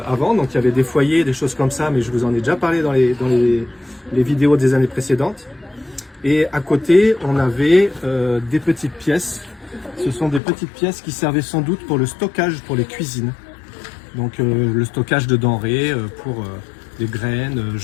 avant, donc il y avait des foyers, des choses comme ça, mais je vous en ai déjà parlé dans les vidéos des années précédentes. Et à côté, on avait des petites pièces. Ce sont des petites pièces qui servaient sans doute pour le stockage pour les cuisines. Donc le stockage de denrées pour des graines,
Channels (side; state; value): right; drops out; at 10.4 s